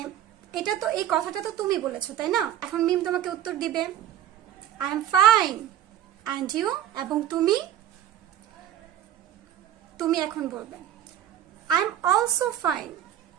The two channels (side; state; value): left; quieter; 11.2 dB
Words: এটা তো এই কথাটা তো তুমি বলেছো তাই না? এখন মিম তোমাকে উত্তর দিবে I am fine, and you? এবং তুমি এখন বলবে আই এম অলসো ফাইন,